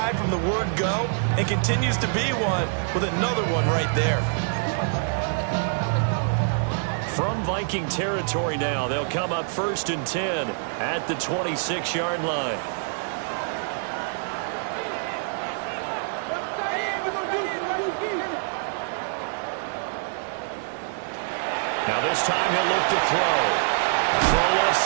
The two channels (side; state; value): left; silent; 60 dB below the other